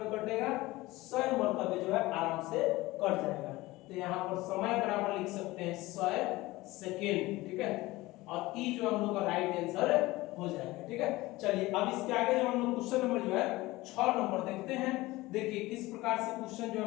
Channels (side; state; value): right; quieter; 19.5 dB